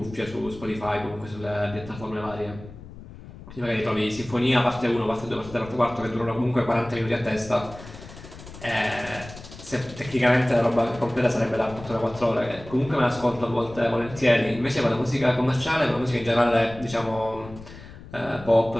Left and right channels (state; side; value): noise; left; rumble, 16 dB below the sound